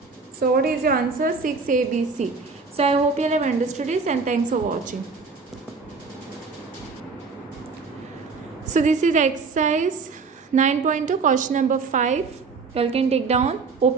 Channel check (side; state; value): left; quieter; 4.6 dB